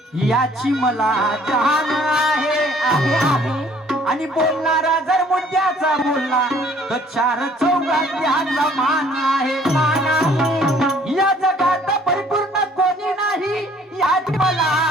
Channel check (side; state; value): both; normal; correlation 0.58